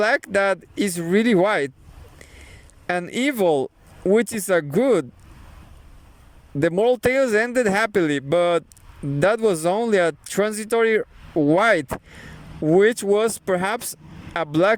that is really white. An evil, which is a good. The moral tales ended happily, but that was only a transitory white, which was perhaps a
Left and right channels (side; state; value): both; identical; correlation 1.00